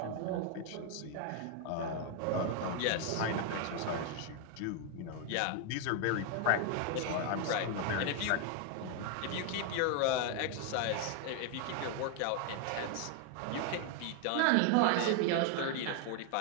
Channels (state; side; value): different; both; correlation 0.01